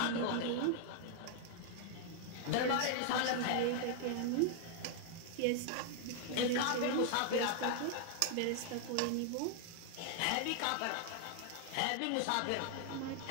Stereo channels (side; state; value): both; different; correlation 0.00